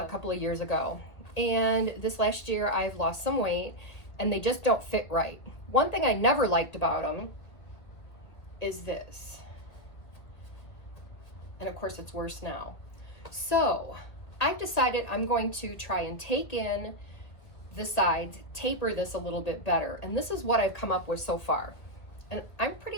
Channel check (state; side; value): late; right; 1.6 ms